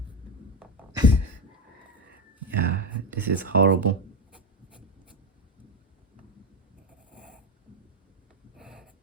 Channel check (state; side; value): normal; both; correlation 0.13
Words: Yeah, this is horrible.